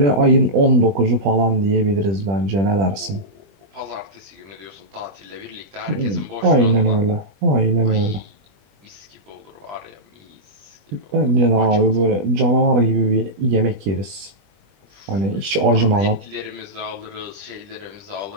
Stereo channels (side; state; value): left; late; 20 ms